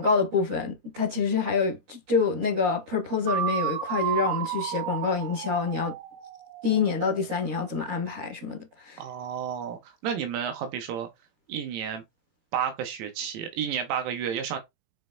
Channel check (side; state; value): left; late; 18 ms